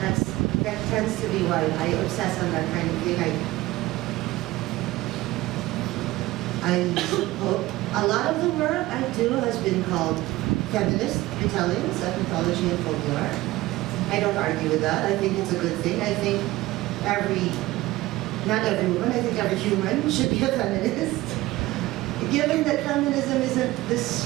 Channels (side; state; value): left; quieter; 18.3 dB